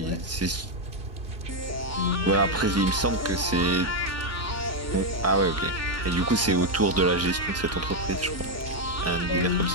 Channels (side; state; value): both; normal; correlation 0.03